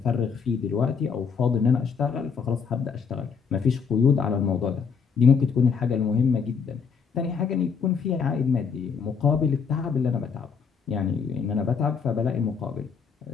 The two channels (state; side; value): quieter; right; 6.1 dB